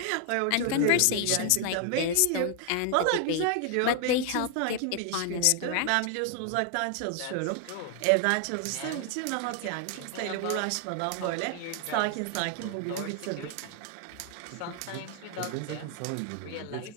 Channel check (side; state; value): both; different; correlation 0.00